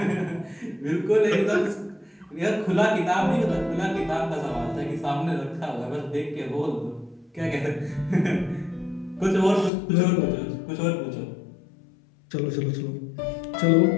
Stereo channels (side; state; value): right; drops out; at 9.7 s